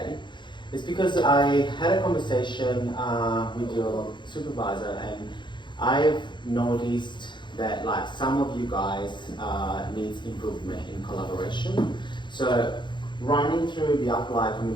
It's because I had a conversation with your supervisor, and I've noticed that some of you guys needs improvement in collaboration. So running through the applied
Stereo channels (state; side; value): late; right; 0.23 ms